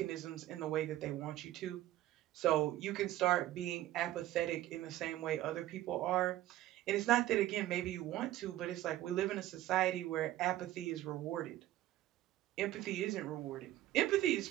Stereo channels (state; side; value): quieter; left; 14.5 dB